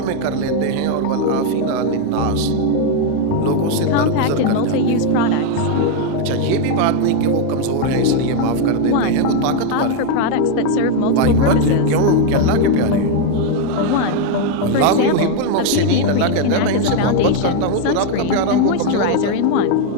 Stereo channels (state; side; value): different; both; correlation 0.01